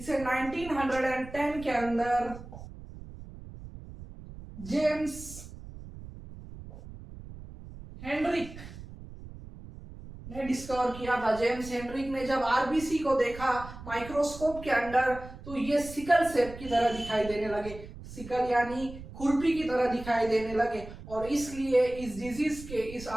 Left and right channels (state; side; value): noise; right; rumble, 14 dB below the sound